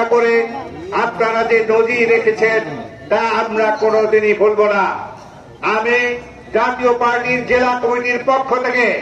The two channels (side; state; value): both; identical; correlation 1.00